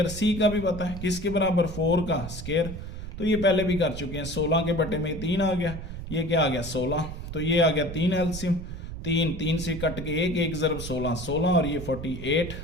c का भी पता है किसके बराबर 4 का स्क्वायर। तो ये पहले भी कर चुके हैं। 16 के बटे में 3 आ गया, ये क्या आ गया 16। तो ये आ गया 3 एलसीएम, 3 से कट के 1 ज़रब 16 और ये 48।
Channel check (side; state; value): right; noise; rumble, 9 dB below the sound